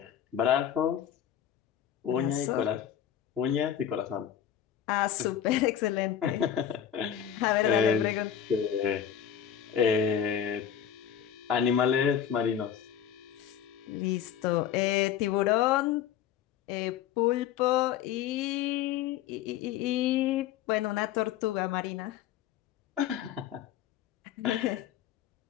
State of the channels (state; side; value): quieter; right; 9.6 dB